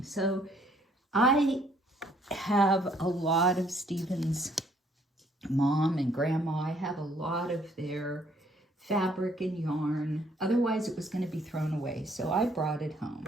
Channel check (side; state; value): both; normal; correlation 0.65